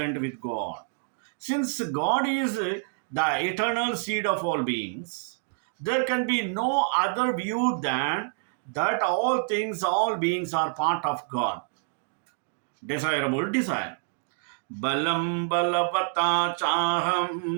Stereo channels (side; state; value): left; silent; digital silence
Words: with God. Since God is the eternal seed of all beings, there can be no other view than that all things, all beings are part of God. Desirable desire. Balam balavata